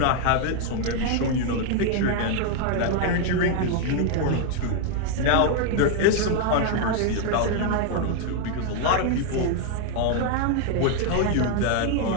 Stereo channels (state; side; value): different; both; correlation 0.00